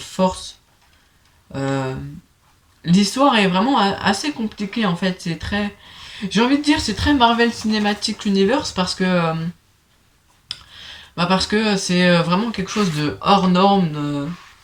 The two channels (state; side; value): identical; both; correlation 1.00